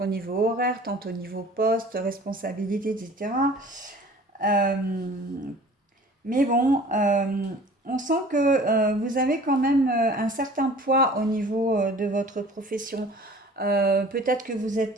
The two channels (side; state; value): both; normal; correlation 0.46